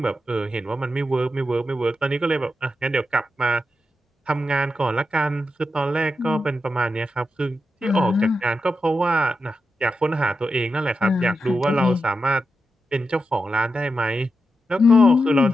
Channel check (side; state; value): both; normal; correlation 0.88